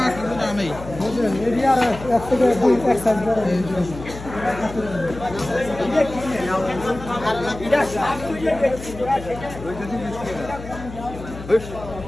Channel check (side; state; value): left; noise; hum, 13 dB below the sound